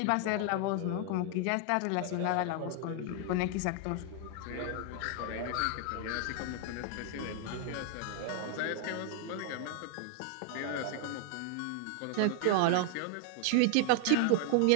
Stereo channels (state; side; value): different; both; correlation 0.00